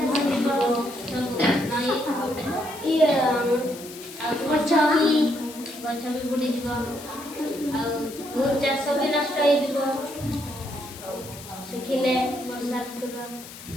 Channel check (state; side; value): noise; left; hiss, 15 dB below the sound